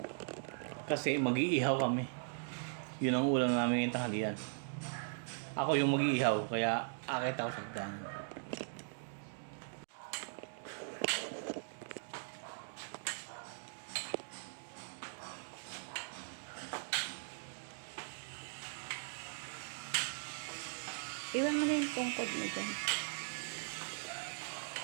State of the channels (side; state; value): left; silent; digital silence